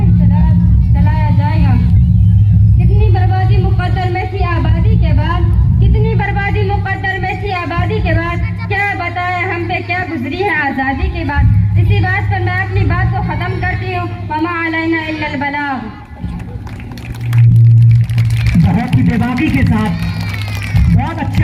चलाया जाएगा। कितनी बर्बादी मुक़द्दर में थी आबादी के बाद, कितनी बर्बादी मुक़द्दर में थी आबादी के बाद। क्या बताएं हम पे क्या गुजरी है आज़ादी के बाद। इसी बात पर मैं अपनी बात को ख़त्म करती हूँ। वमा अलैना इल्लल बलाग। बहुत ही बेबाकी के साथ बहुत अच्छे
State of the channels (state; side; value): identical; both; correlation 1.00